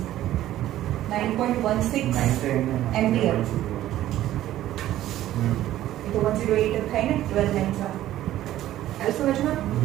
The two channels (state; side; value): quieter; left; 13.6 dB